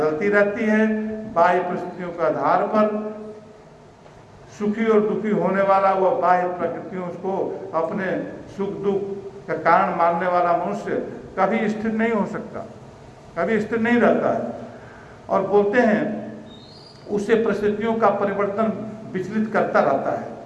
रहती है। बाह्य परिस्थितियों के आधार पर सुखी और दुखी होने वाला वह बाह्य प्रकृतियों को अपने सुख दुख का कारण मानने वाला मनुष्य कभी स्थिर नहीं हो सकता, कभी स्थिर नहीं रहता है। और बोलते हैं उससे परिस्थितियों का परिवर्तन विचलित करता रहता है,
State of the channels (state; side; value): identical; both; correlation 1.00